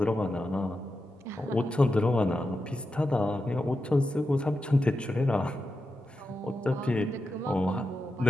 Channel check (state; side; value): normal; both; correlation 0.89